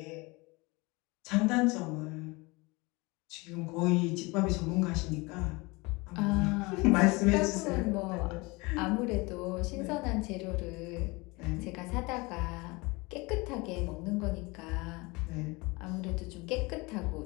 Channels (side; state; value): right; quieter; 25.1 dB